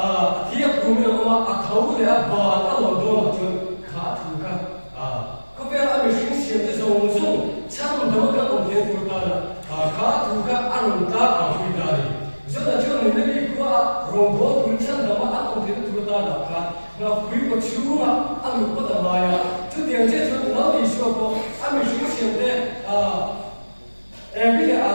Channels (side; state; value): both; inverted; correlation -1.00